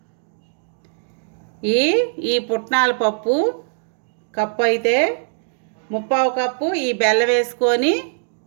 ఈ పుట్నాల పప్పు కప్పు అయితే 3/4 కప్పు ఈ బెల్లం వేసుకొని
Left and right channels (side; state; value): left; silent; digital silence